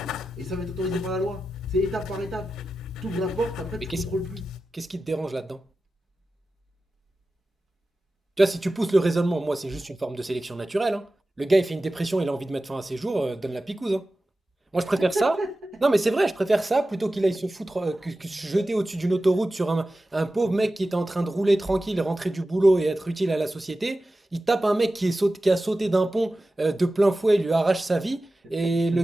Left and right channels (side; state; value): both; normal; correlation 0.94